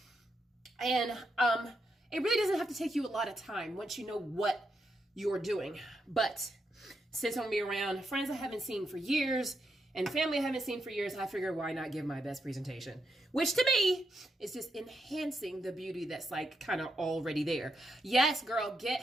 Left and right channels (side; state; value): both; normal; correlation 0.82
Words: And it really doesn't have to take you a lot of time once you know what you're doing. But since I'm going to be around friends I haven't seen for years and family I haven't seen for years, I figure why not give my best presentation, which to me is just enhancing the beauty that's like kind of already there. Yes, girl,